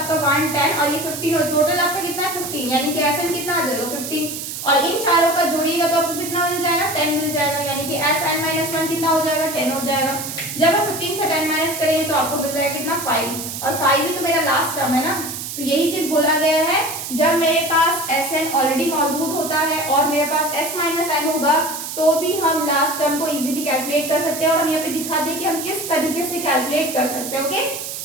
1 10 और ये 15 और टोटल आपका कितना है 15, यानी कि Sn कितना आ जाएगा 15, और इन चारों का जोड़िएगा तो आपको कितना मिल जाएगा, 10 मिल जाएगा, यानी कि Sn-1 कितना हो जाएगा, 10 हो जाएगा। जब आप 15 से 10 माइनस करेंगे तो आपको मिल जाएगा कितना, 5, और 5 ही तो मेरा लास्ट टर्म है ना, तो यही चीज बोला गया है, जब मेरे पास Sn ऑलरेडी मौजूद होता है और मेरे पास S-n होगा तो भी हम लास्ट टर्म को इजीली कैलकुलेट कर सकते हैं, और हम यहाँ पे दिखा दें कि हम किस तरीके से कैलकुलेट कर सकते हैं, ओके।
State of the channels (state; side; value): noise; right; hiss, 7 dB below the sound